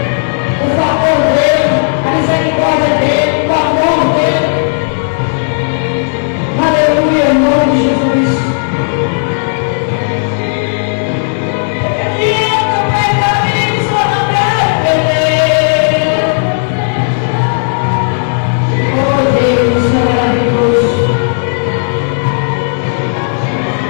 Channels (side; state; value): right; silent; digital silence